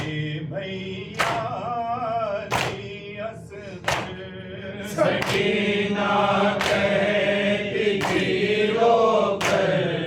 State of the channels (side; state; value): both; identical; correlation 1.00